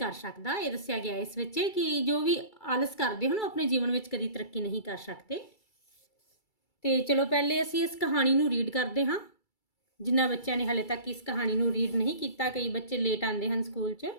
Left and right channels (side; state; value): right; late; 2.3 ms